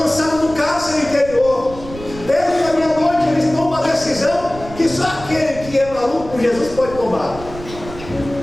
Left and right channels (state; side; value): noise; right; rumble, 14 dB below the sound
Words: no cárcere interior. Perto da meia-noite eles tomam uma decisão que só aquele que é maluco por Jesus pode tomar.